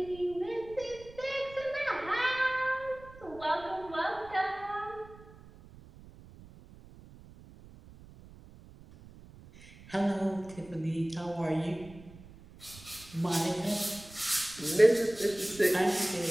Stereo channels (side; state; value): right; noise; rumble, 20 dB below the sound